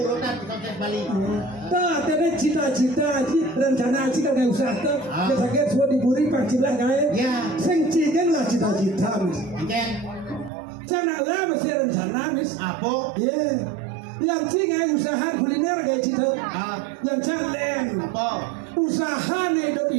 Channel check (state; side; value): drops out; left; at 10.5 s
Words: sukses Bali. Tak ada cita-cita rencana jika ada usaha tuh. Kita sakit semua diburi pancilah gaya. Ya. Sing cigen lah cita-cita mis. Cigen. Jangan lah mesti rencana mis. Apa? Yeah. Yang cigen usaha kuliner gaya cita. Yang calen. Apa? Usaha nih